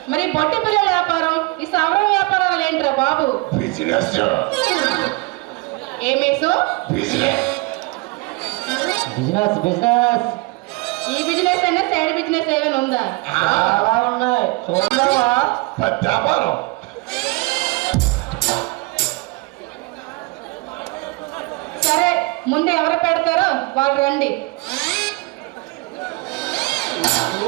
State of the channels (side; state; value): left; quieter; 25.7 dB